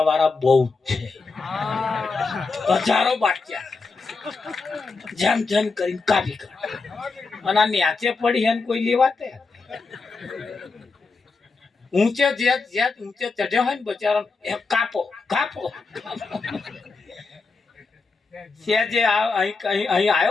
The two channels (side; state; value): right; quieter; 4.2 dB